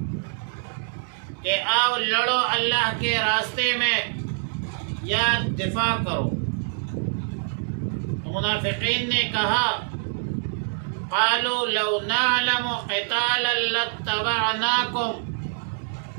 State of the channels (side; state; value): left; silent; digital silence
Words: کہ آؤ لڑو اللہ کے راستے میں یا دفاع کرو۔ منافقین نے کہا قالوا لو نعلم قتالا لاتبعناکم،